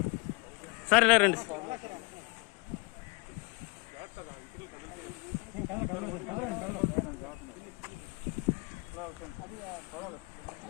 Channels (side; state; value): right; quieter; 27.2 dB